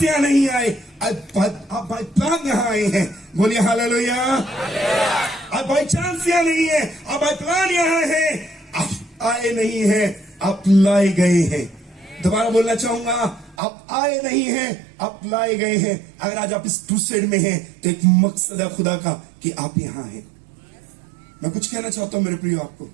यहां नहीं आए, आप बाई प्लान यहां आए हैं। बोलिए हालेलुया। आप बाई चांस यहां नहीं है, आप बाई प्लान यहां है। आप आए नहीं है, आप लाए गए हैं। दोबारा बोलना चाहूंगा, आप आए नहीं हैं, आप लाए गए हैं। अगर आज आप इस क्रूसेड में हैं तो एक मकसद है खुदा का कि आप यहां हैं। मैं कुछ कहना चाहता हूं मेरे प्रियो आपको।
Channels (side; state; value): left; drops out; at 13.6 s